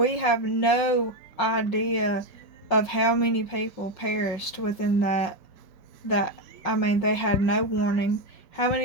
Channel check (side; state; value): right; late; 5.5 ms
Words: have no idea of how many people perished within that I mean, they had no warning. How